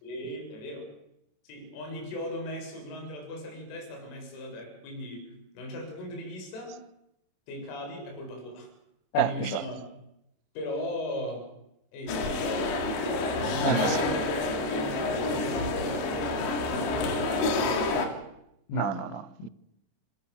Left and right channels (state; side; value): late; right; 27 ms